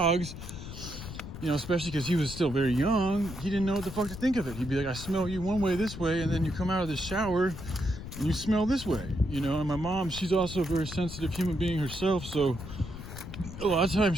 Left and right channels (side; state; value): left; noise; rumble, 10 dB below the sound